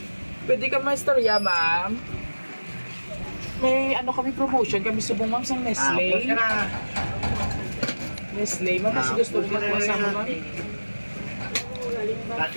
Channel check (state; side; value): inverted; both; correlation -1.00